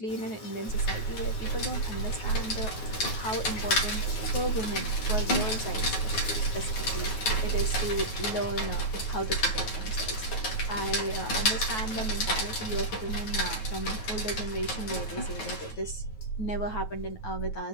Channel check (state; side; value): late; right; 9.4 ms